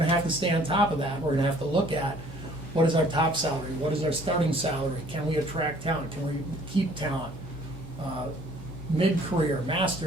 to have to stay on top of that. We're going to have to look at what is our top salary, what is our starting salary, can we attract talent, can we keep talent, mid-career,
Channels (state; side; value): normal; both; correlation 0.56